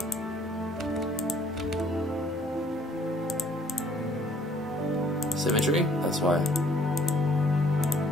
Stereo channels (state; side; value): normal; both; correlation 0.60